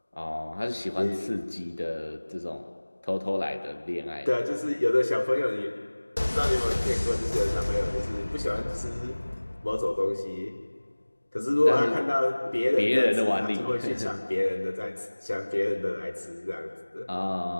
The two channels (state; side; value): inverted; both; correlation -1.00